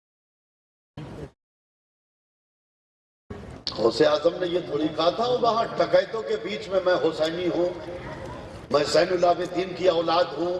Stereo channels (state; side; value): identical; both; correlation 1.00